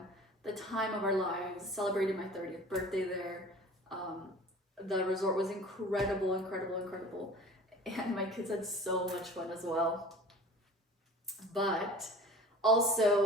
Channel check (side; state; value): both; normal; correlation 0.42